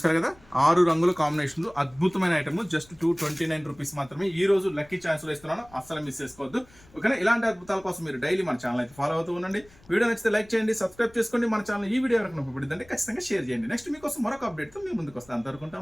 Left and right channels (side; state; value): left; noise; rumble, 26 dB below the sound